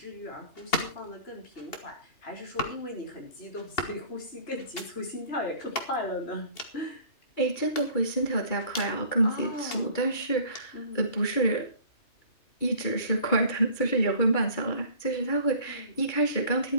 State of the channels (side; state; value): right; late; 2.8 ms